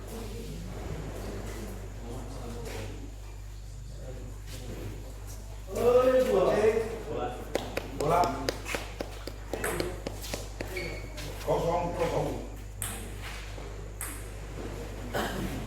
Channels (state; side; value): identical; both; correlation 1.00